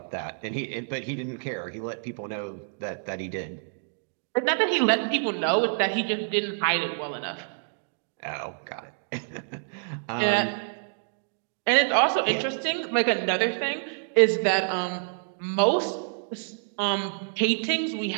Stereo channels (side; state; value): left; silent; digital silence